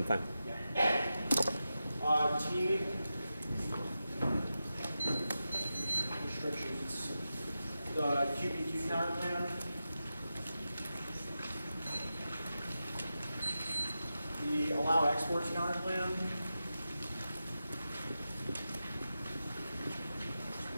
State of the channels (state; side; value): inverted; both; correlation -0.91